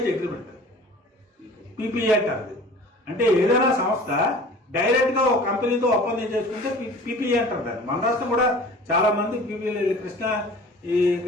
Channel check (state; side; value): normal; both; correlation 0.44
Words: అగ్రిమెంట్. పీపీఏ అంటారు. అంటే ఏదైనా సంస్థ డైరెక్ట్ గా ఒక కంపెనీతో ఒప్పందం చేసుకుంటే పీపీఏ అంటారు దాన్ని. మన రాష్ట్రం కూడా చాలా మంది పీపీఏ,